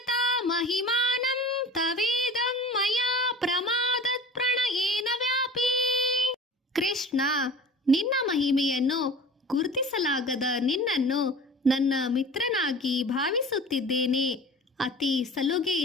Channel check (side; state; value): both; normal; correlation 0.40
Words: ಮಹಿಮಾನಂ ತವೇದಂ ಮಯಾ ಪ್ರಮಾದತ್ ಪ್ರಣಯೇನ ವ್ಯಾಪಿ. ಕೃಷ್ಣ, ನಿನ್ನ ಮಹಿಮೆಯನ್ನು ಗುರುತಿಸಲಾಗದ ನಿನ್ನನ್ನು ನನ್ನ ಮಿತ್ರನಾಗಿ ಭಾವಿಸುತ್ತಿದ್ದೇನೆ. ಅತಿ